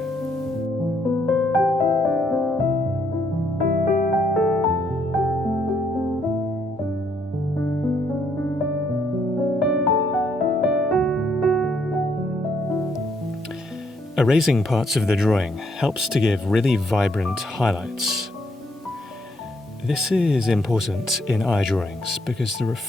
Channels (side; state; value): both; normal; correlation 0.71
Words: Erasing parts of the drawing helps to give really vibrant highlights. This is important in eye drawings because the